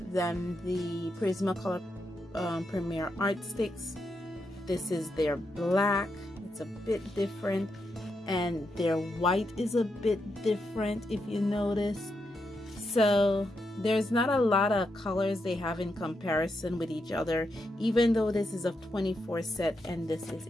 than the Prismacolor Premier Art Stix. This is their black. It's a bit different, and their white is a bit different if you notice. So there's not a lot of colors they have in comparison with each other. Even though this is a 24 set and this is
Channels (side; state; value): both; normal; correlation 0.83